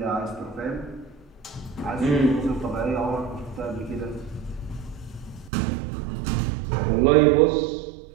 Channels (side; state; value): left; drops out; at 5.5 s